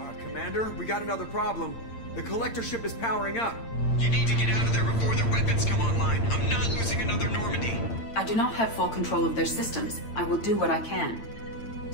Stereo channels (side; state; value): right; late; 8.8 ms